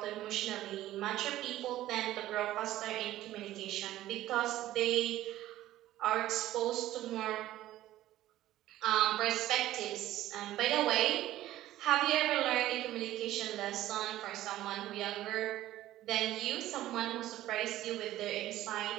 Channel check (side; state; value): left; quieter; 14.5 dB